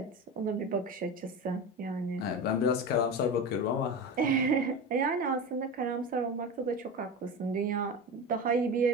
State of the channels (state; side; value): normal; both; correlation 0.25